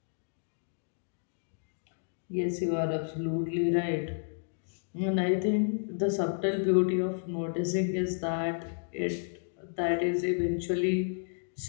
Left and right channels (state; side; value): silent; right; digital silence